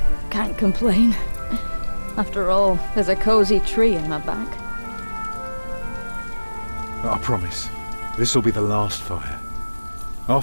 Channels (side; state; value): both; inverted; correlation -1.00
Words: can't complain. After all, there's a cozy tree in my back. I promise, this will be the last fire.